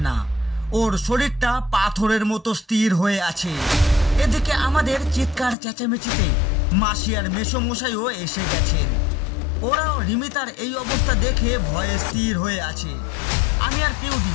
না। ওর শরীরটা পাথরের মতো স্থির হয়ে আছে। এদিকে আমাদের চিৎকার চেঁচামেচিতে মাসি আর মেসোমশাইও এসে গেছেন। ওরাও রিমিতার এই অবস্থা দেখে ভয়ে স্থির হয়ে আছে। আমি আর পেউদি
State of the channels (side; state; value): right; drops out; at 5.6 s